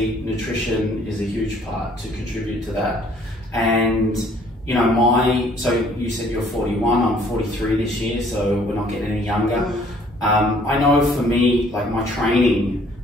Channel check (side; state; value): both; normal; correlation 0.60